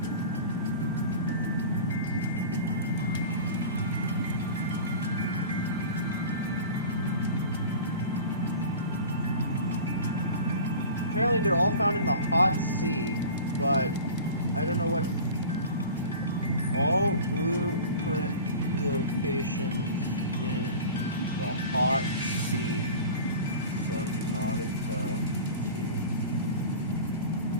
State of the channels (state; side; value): inverted; both; correlation -0.37